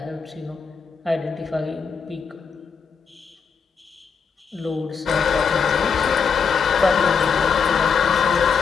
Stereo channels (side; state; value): right; quieter; 6.0 dB